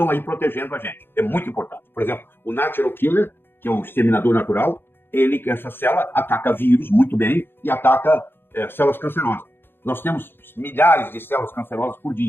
aí protegendo a gente. É muito importante. Por exemplo, o natural killer, que é o exterminador natural, essa célula ataca vírus muito bem e ataca células cancerosas. Nós temos milhares de células cancerosas por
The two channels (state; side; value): late; right; 0.10 ms